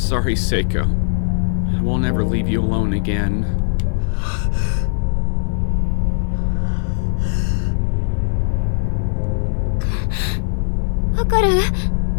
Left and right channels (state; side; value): silent; right; 61 dB below the other